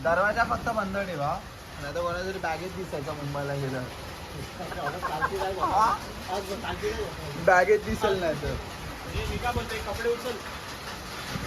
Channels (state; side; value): identical; both; correlation 1.00